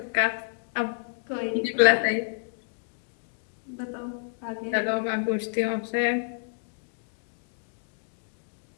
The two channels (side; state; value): right; silent; digital silence